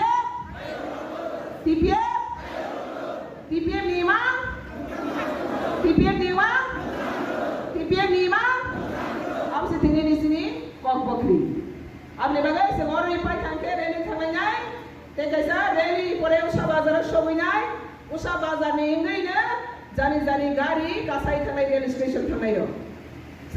lima apa sih tinggi di sini kok bakri abne bagai semua orang ipai kanker reli thangai tegasa reli pore usah bazar shobinai usah bazar ni ingai na jani gari kasai thangai rail station thangai yo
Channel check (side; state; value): both; identical; correlation 1.00